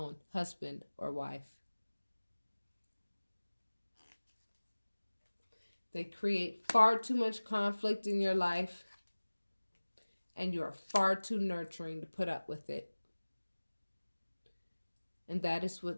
husband or wife. They create far too much conflict in your life, and you are far too nurturing to put up with it. And that is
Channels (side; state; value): both; inverted; correlation -1.00